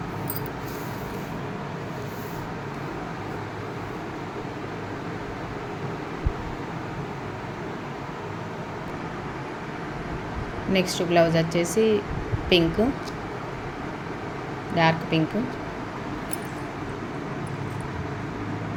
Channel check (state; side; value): identical; both; correlation 1.00